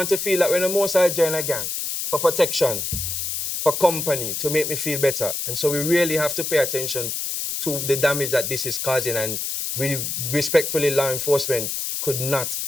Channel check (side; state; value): left; noise; hiss, 3 dB below the sound